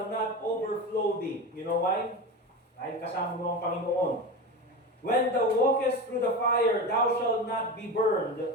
not overflow thee. You know why? Dahil kasama mo ang Panginoon. When thou walkest through the fire, thou shalt not be burned,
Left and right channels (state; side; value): normal; both; correlation 0.25